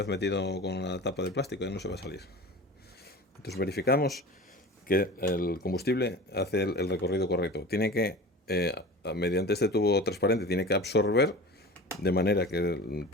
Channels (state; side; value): normal; both; correlation 0.36